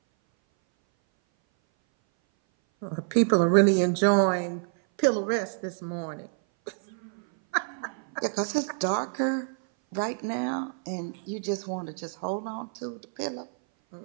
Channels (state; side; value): silent; left; 57 dB below the other